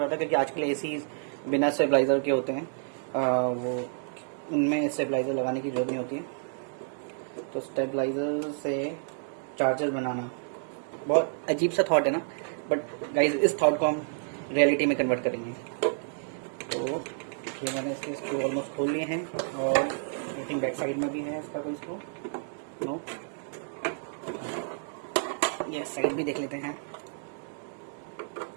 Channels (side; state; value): left; silent; digital silence